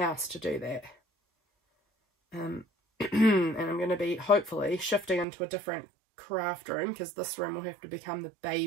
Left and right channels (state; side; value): drops out; left; at 5.2 s